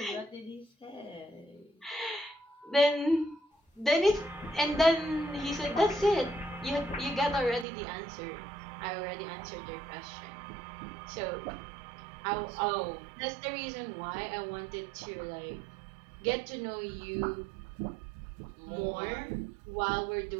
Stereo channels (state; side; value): drops out; left; at 7.7 s